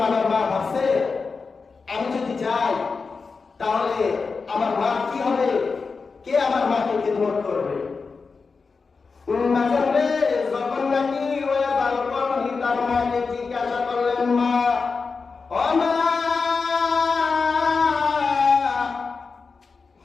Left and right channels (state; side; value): quieter; right; 4.7 dB